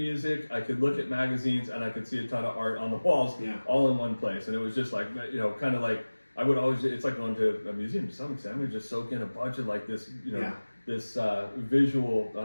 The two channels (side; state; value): both; inverted; correlation -1.00